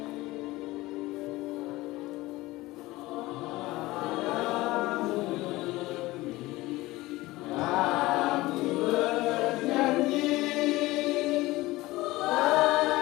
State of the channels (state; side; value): quieter; right; 19.2 dB